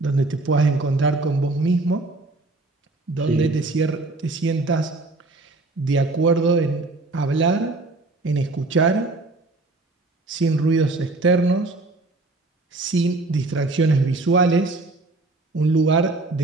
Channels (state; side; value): quieter; left; 3.2 dB